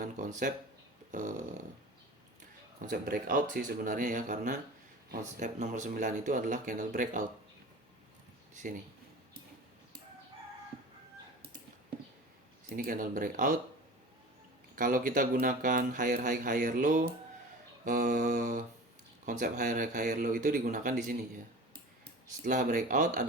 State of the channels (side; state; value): both; normal; correlation 0.37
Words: konsep breakout sih sebenarnya ya, karena konsep nomor 9 itu adalah candle breakout. Di sini. Sini candle breakout. Kalau kita gunakan higher high higher low, konsep higher high higher low itu digunakan di sini ya. Setelah breakout